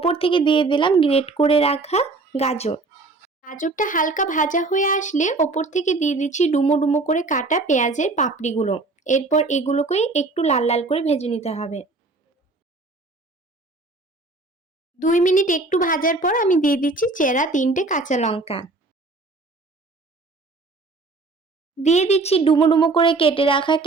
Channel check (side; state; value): left; quieter; 3.4 dB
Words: থেকে দিয়ে দিলাম গ্রেট করে রাখা গাজর। গাজরটা হালকা ভাজা হয়ে আসলে ওপর থেকে দিয়ে দিচ্ছি ডুমো ডুমো করে কাটা পেঁয়াজের পাপড়িগুলো। এরপর এগুলোকেই একটু লাল লাল করে ভেজে নিতে হবে। 2 মিনিট একটু ভাজার পর আমি দিয়ে দিচ্ছি চেরা 3টে কাঁচা লঙ্কা। দিয়ে দিচ্ছি ডুমো ডুমো করে কেটে রাখা